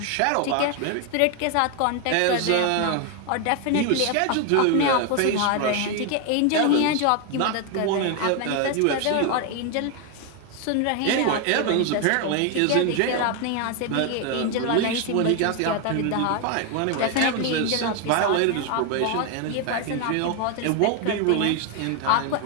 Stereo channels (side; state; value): both; different; correlation 0.01